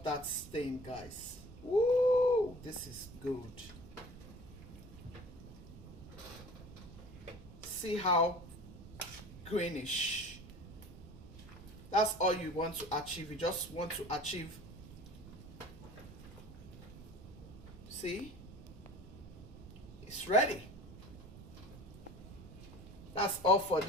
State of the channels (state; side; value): noise; right; rumble, 15 dB below the sound